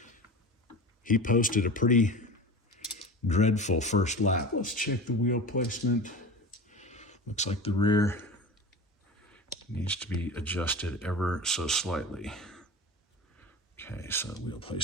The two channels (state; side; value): normal; both; correlation 0.32